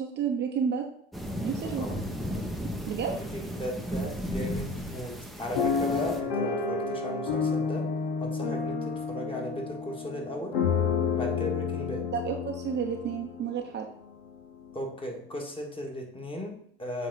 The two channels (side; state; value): both; normal; correlation 0.37